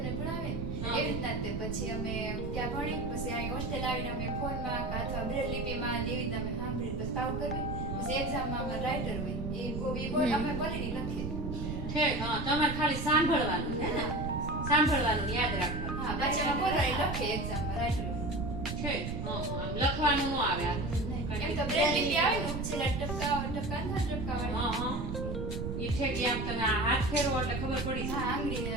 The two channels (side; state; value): right; noise; rumble, 4 dB below the sound